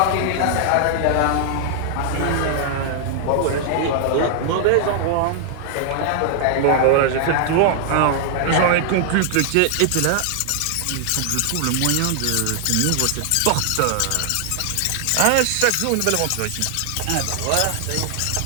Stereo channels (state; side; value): different; both; correlation 0.00